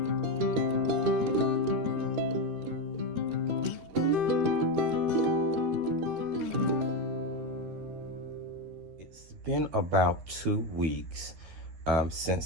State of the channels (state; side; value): late; left; 13 ms